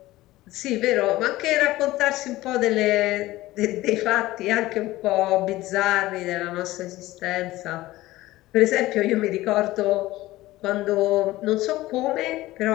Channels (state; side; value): quieter; right; 17.3 dB